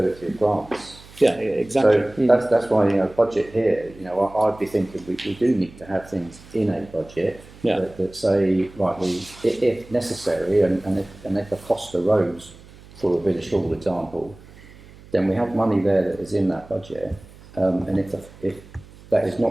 of grants. yeah, exactly. So that's why budget here. I'd be thinking we do need to have things in a budget that say right, if necessary, and if a cost arose for a village hall example, then we have money there that is in that budget, and if that is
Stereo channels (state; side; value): noise; right; hum, 21 dB below the sound